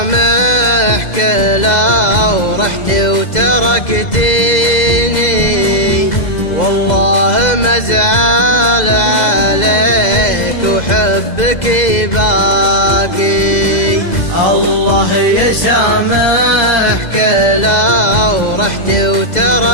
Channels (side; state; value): right; late; 2.0 ms